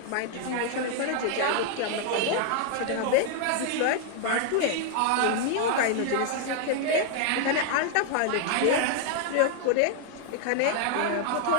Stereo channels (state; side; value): different; both; correlation 0.00